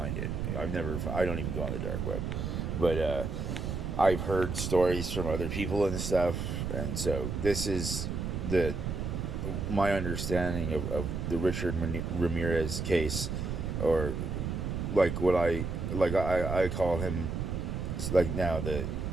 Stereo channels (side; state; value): right; noise; rumble, 3 dB below the sound